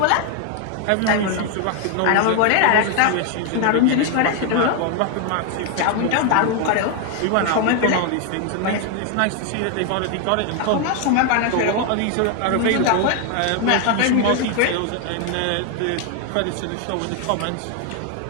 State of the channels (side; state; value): both; different; correlation 0.01